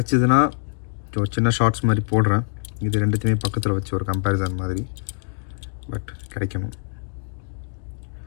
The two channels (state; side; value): silent; right; digital silence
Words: ஒரு சின்ன ஷார்ட்ஸ் மாதிரி போடுறேன். இது ரெண்டுத்தையுமே பக்கத்தில் வச்சு ஒரு கம்பேரிசன் மாதிரி, பட் கிடைக்கணும்.